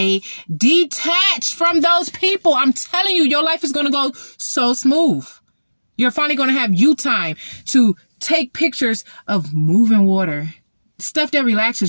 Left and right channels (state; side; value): inverted; both; correlation -1.00